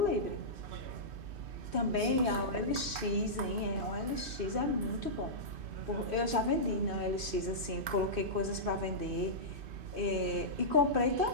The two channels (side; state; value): left; late; 2.5 ms